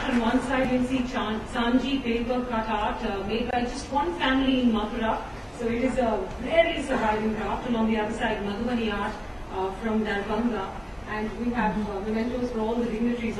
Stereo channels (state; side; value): identical; both; correlation 1.00